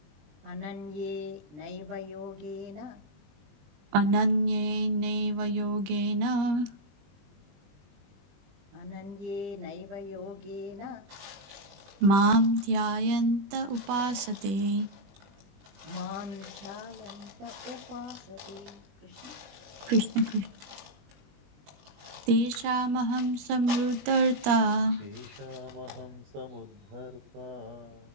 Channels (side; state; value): left; late; 20 ms